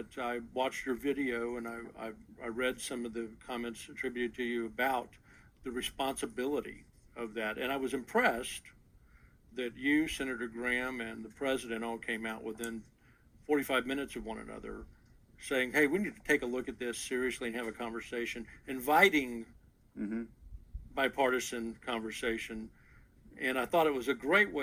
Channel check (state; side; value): identical; both; correlation 1.00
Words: I watched your video, and I read some of the comments attributed to you about the responsibility of that. And I was impressed that you, Senator Graham, and the president all came out within 45 minutes of one another saying, hey, we need to take a look at this seriously and have a conversation, inviting bipartisan conversation. And I thought it was a great